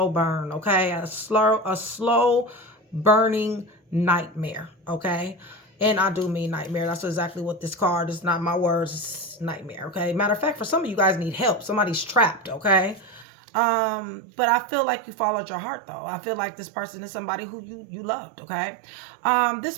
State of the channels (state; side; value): drops out; left; at 13.2 s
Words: burn, okay? A slow burning nightmare, okay? And I do mean nightmare. That's exactly what this card is. Not my words. It's nightmare, okay? Matter of fact, for some of you guys need help. Somebody's trapped, okay? But I feel like you followed your heart though. I feel like this person is somebody who you loved, okay? This